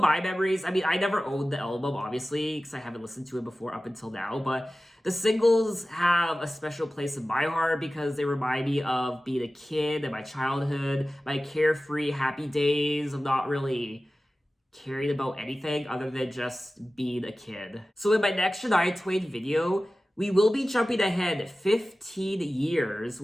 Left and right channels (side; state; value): both; normal; correlation 0.96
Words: my memories, I mean, I never owned the album, obviously, because I haven't listened to it before up until now, but the singles have a special place in my heart because they remind me of being a kid and my childhood, my carefree, happy days of not really caring about anything other than just being a kid. So in my next Shania Twain video, we will be jumping ahead 15 years